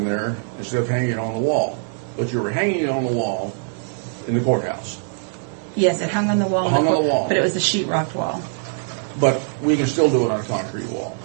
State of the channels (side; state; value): left; silent; digital silence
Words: there instead of hanging it on the wall. But you were hanging it on the wall in the courthouse. Yes, it hung on the wall. Hung on the wall. But it was a sheetrock wall. But we can still do it on a concrete wall.